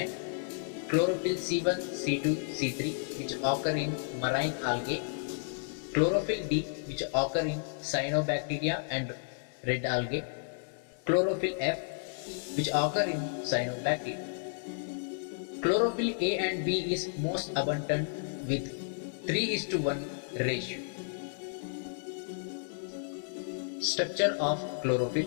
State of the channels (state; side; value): silent; right; digital silence